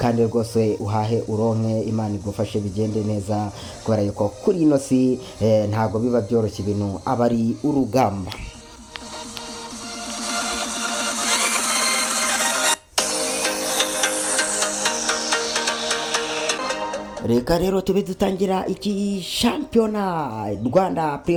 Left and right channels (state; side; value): identical; both; correlation 1.00